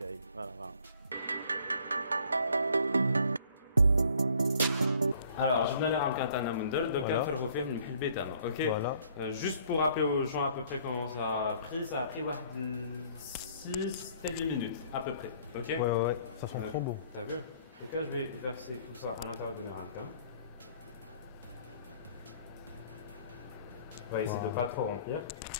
Voilà, voilà. Alors, je vais aller à un Mundel, donc on va faire faire une bétane, ok? Voilà. Juste pour rappeler aux gens à peu près comment ça a pris 6 8 minutes à peu près, ok? Ouais, ouais, ça sent trop bon. T'as vu? Donc là, je vais verser tout ça à l'intérieur de mes ramequins. On va essayer de ne pas trop remplir.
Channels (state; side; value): inverted; both; correlation -0.58